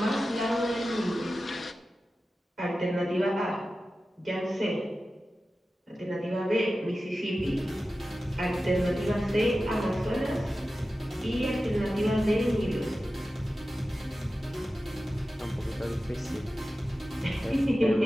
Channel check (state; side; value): normal; both; correlation 0.94